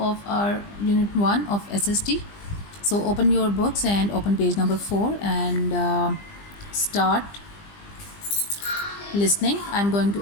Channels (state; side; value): late; right; 20 ms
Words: our unit 1 of SST. So open your books and open page number 4 and start listening. I'm going